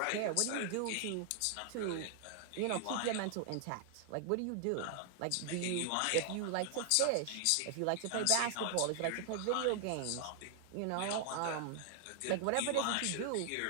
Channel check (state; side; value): different; both; correlation 0.00